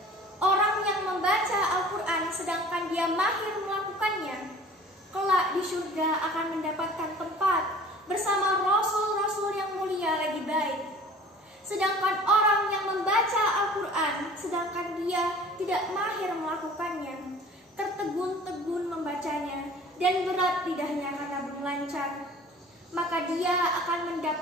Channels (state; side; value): normal; both; correlation 0.47